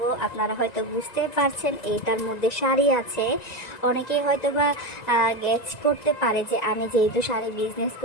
আপনারা হয়তো বুঝতে পারছেন এটার মধ্যে শাড়ি আছে। অনেকেই হয়তো বা গেস করতে পারে যে আমি যেহেতু শাড়ি বিজনেস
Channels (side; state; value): right; late; 1.9 ms